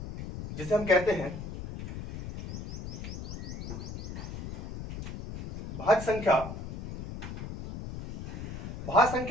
जिसे हम कहते हैं भाज्य संख्या। भाज्य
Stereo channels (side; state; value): left; noise; rumble, 8 dB below the sound